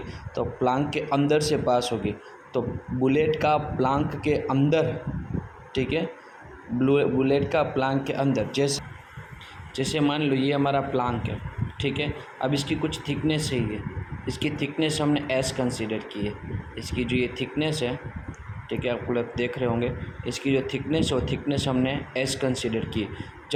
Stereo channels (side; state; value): both; identical; correlation 1.00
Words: तो प्लांक के अंदर से पास होगी, तो बुलेट का प्लांक के अंदर, ठीक है, बुलेट का प्लांक के अंदर, जैसे मान लो ये हमारा प्लांक है। ठीक है, अब इसकी कुछ थिकनेस है, ये इसकी थिकनेस हमने s कंसीडर की है। इसकी जो ये थिकनेस है, ठीक है, आप लोग देख रहे होंगे, इसकी जो थिकनेस है वो थिकनेस हमने s कंसीडर की।